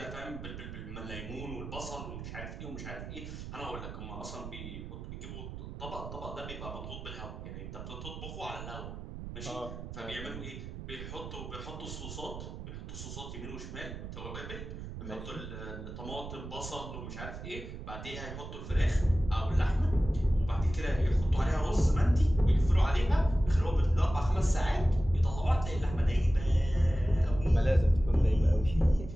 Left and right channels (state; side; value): noise; right; rumble, 10 dB below the sound